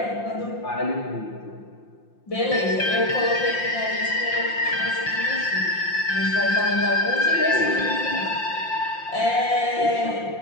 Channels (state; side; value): late; right; 5.7 ms